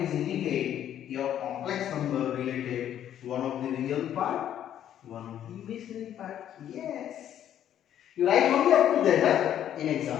is indicate your complex number related one of the real part, one of the imaginary part. Yes. You write only up to that in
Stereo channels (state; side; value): quieter; right; 10.6 dB